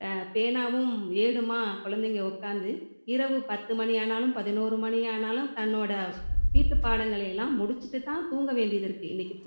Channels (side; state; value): both; inverted; correlation -1.00